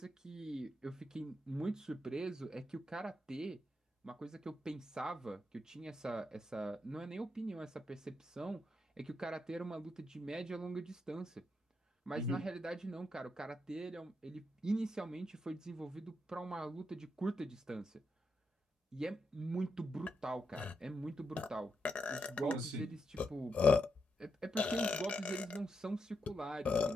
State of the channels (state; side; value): normal; both; correlation 0.82